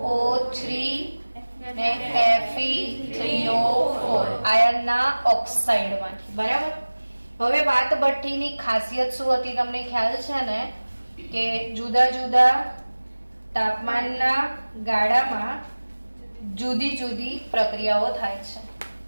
ને Fe3O4 આયનના ઓક્સાઇડમાંથી. બરાબર. હવે વાત ભઠ્ઠીની ખાસિયત શું હતી તમને ખ્યાલ છે ને? કે જુદા જુદા તાપમાનના ગાળામાં જુદી જુદી પ્રક્રિયાઓ થાય છે.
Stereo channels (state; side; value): inverted; both; correlation -1.00